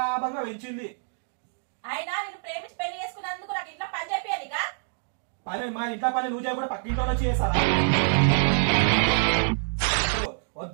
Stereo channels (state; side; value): silent; left; digital silence